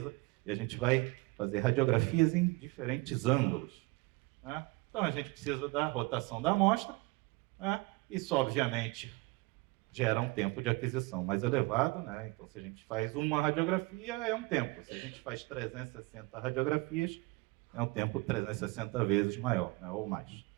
e a gente vai fazer radiografias em diferentes ângulos. Então, a gente precisa da rotação da amostra. Isso, obviamente, gera um tempo de aquisição mais elevado, né? Então, se a gente faz uma radiografia, é um tempo. Se a gente faz 360 radiografias, é um tempo 360 vezes maior, né? Ou mais.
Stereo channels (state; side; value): quieter; left; 24.0 dB